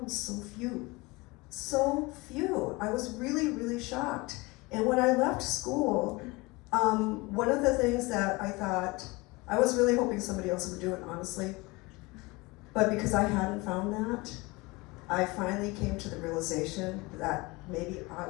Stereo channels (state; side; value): quieter; right; 24.0 dB